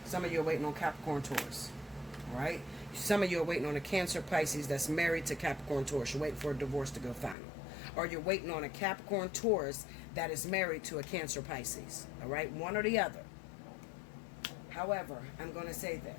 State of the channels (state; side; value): drops out; right; at 7.4 s